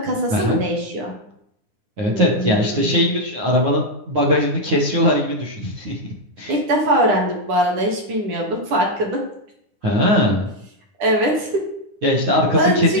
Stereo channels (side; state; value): left; late; 10 ms